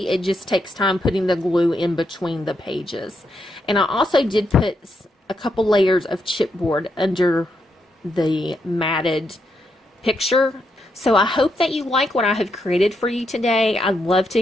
It just takes time putting the glue in between the pages. And I also did put a couple layers of chipboard under the matted picture. So I hope that you like what I have created for you today. I'd love to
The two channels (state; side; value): normal; both; correlation 0.81